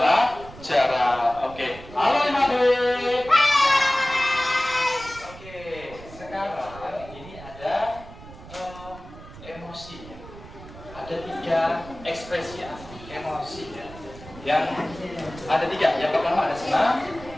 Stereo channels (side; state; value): right; noise; rumble, 17 dB below the sound